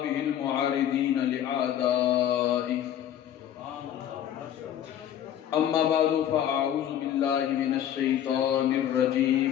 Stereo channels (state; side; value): quieter; right; 10.5 dB